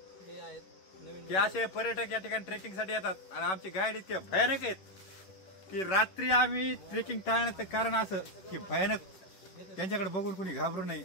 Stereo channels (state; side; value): late; right; 11 ms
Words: ते असे पर्यटक या ठिकाणी ट्रेकिंग साठी येतात आणि आमचे गाईड इतके भयानक आहेत की रात्री आम्ही ट्रेकिंग टाळण्याचं कारण असं की भयानक त्यांच्याकडे बघून कोणी घाबरू नये